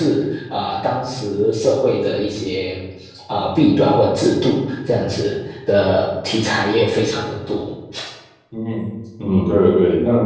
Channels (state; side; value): identical; both; correlation 1.00